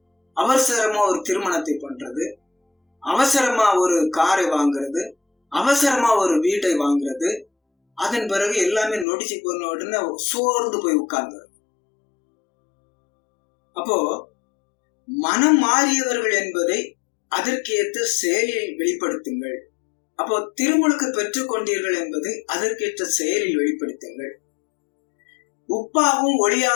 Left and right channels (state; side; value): drops out; right; at 9.1 s